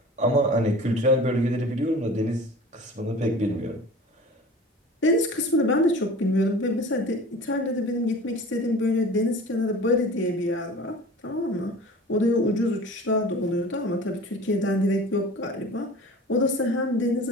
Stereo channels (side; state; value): both; normal; correlation 0.40